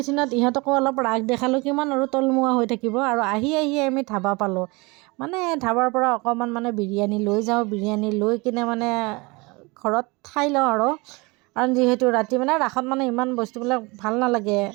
ইহঁতকো অলপ ৰাগ দেখালোঁ কিমান আৰু তলমুৱা হৈ থাকিব আৰু আহি আমি ধাবা পালোঁ মানে ধাবাৰ পৰা অকণমান মানে বিৰিয়ানী লৈ যাওঁ বিৰিয়ানী লৈ কিনে মানে ঘৰত খাই লওঁ আৰু কাৰণ যিহেতু ৰাতি মানে ৰাসত মানে ইমান বস্তুবিলাক ভাল নালাগে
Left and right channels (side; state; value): left; quieter; 26.0 dB